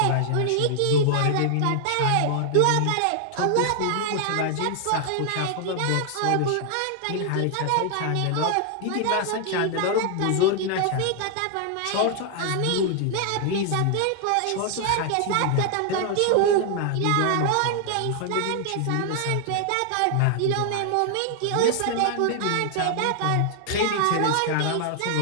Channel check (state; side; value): different; both; correlation 0.00